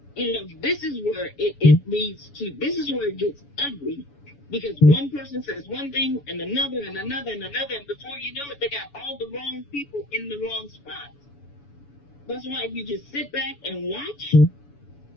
this is where it leads to, this is where it gets ugly. Because one person says one thing and another and another and another, and before you know it, they got all the wrong people in the wrong spots. That's why if you just sit back and watch,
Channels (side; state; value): right; late; 7.0 ms